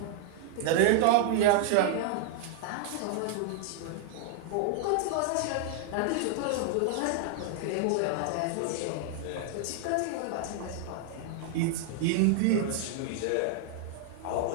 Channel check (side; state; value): both; different; correlation 0.00